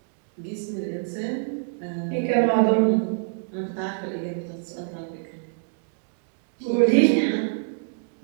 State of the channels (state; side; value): silent; left; digital silence